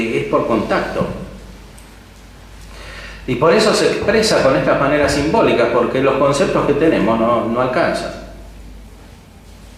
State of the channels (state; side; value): identical; both; correlation 1.00